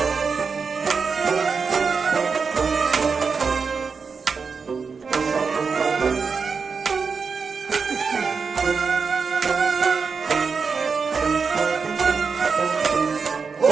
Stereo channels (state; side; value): quieter; left; 5.3 dB